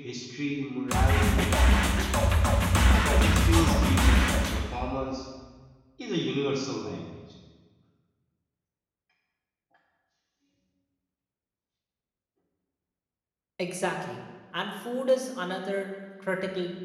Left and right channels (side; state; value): both; identical; correlation 1.00